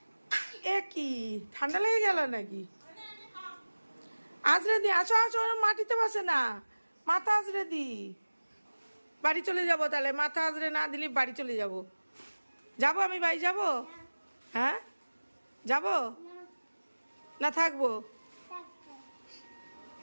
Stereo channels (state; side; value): inverted; both; correlation -1.00